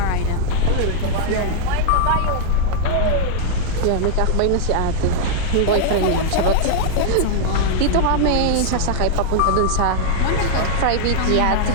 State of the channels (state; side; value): different; both; correlation -0.01